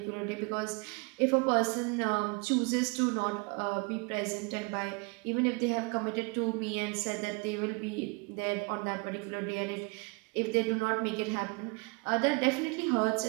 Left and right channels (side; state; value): left; quieter; 30.7 dB